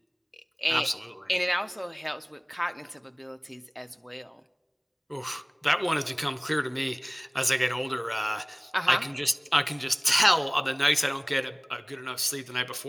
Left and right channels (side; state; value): both; identical; correlation 1.00